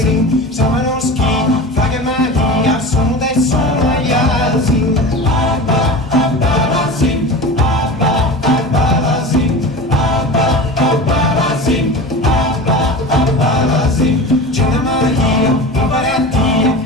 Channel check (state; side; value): normal; both; correlation 0.32